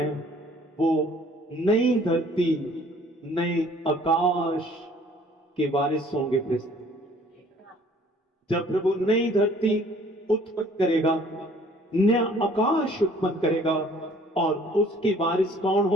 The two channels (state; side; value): normal; both; correlation 0.56